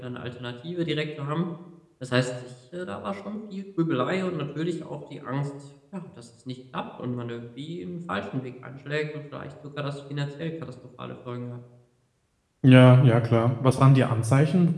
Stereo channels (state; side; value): identical; both; correlation 1.00